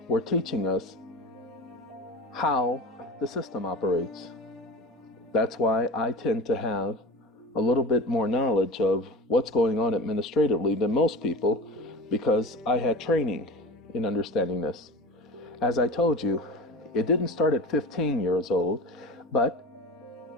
were teaching us how the system operates. That's why I tend to have a little bit more knowledge of what's going on administratively than most people, because I had training in understanding this. As I told you, it didn't start at 15 years old, but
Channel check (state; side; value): normal; both; correlation 0.33